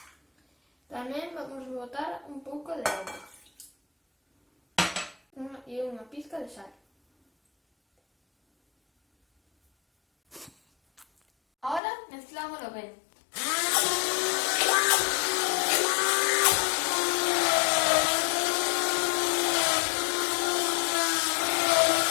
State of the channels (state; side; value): drops out; right; at 11.8 s